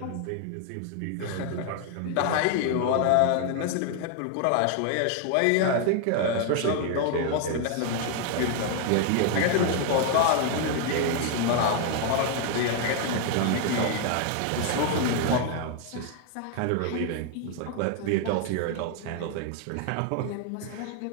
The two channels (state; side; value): different; both; correlation 0.00